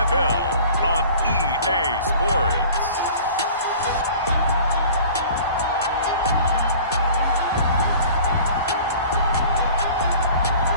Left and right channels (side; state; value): both; inverted; correlation -0.45